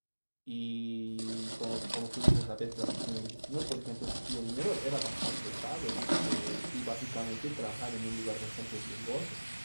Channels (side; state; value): both; inverted; correlation -1.00